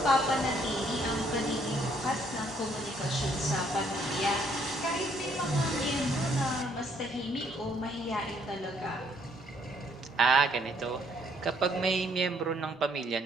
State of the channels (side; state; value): both; normal; correlation 0.67